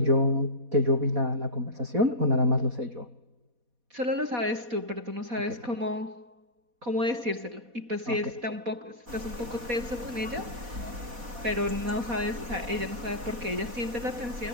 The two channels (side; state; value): left; late; 4.1 ms